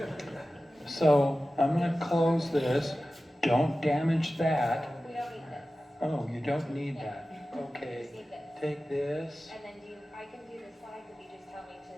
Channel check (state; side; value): normal; both; correlation 0.95